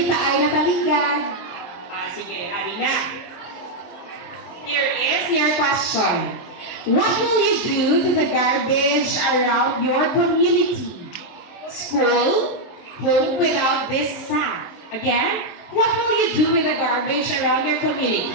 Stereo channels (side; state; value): right; late; 23 ms